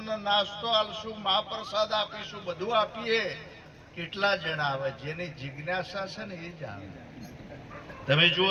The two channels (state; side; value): identical; both; correlation 1.00